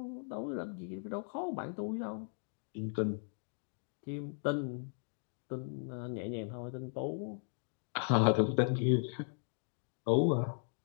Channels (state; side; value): silent; right; 53 dB below the other